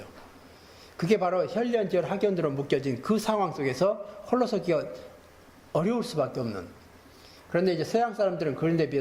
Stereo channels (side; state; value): both; identical; correlation 1.00